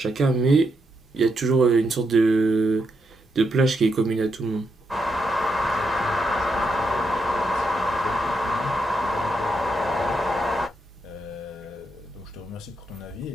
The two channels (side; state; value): both; normal; correlation 0.81